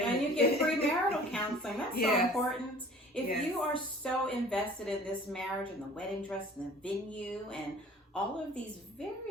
And you get premarital counseling. That's so Yes. important. If Yes. you are so invested in this marriage and the wedding dress and the venue and all of these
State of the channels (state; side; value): normal; both; correlation 0.48